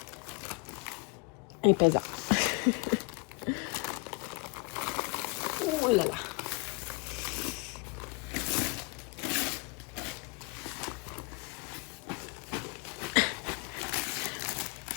Et pesant. Oh là là!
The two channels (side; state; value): right; quieter; 30.8 dB